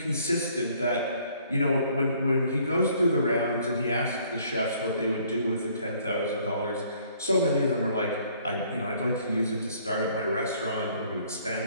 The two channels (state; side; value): inverted; both; correlation -0.61